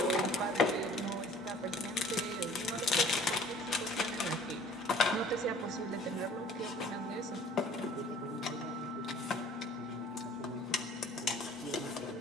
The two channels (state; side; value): normal; both; correlation 0.51